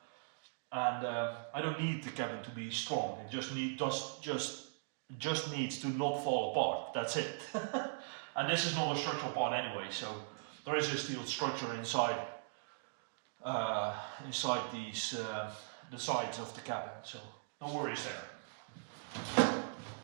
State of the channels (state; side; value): silent; left; digital silence